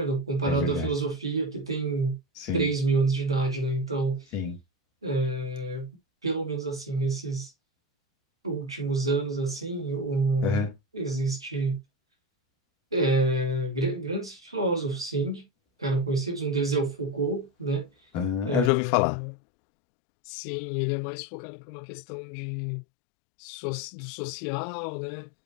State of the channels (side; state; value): right; drops out; at 18.7 s